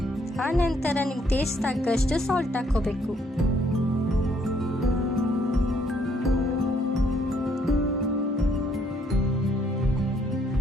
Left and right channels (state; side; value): normal; both; correlation 0.68